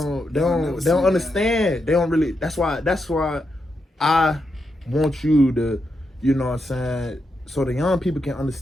understand. They don't really. That's why I want you to, you know what I'm saying, so the young people can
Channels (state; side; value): normal; both; correlation 0.84